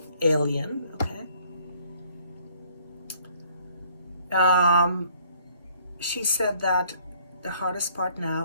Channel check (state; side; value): inverted; both; correlation -0.62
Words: okay? She said that the hardest part